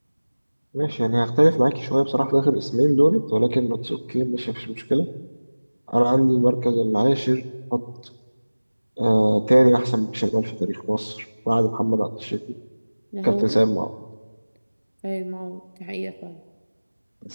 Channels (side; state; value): both; inverted; correlation -1.00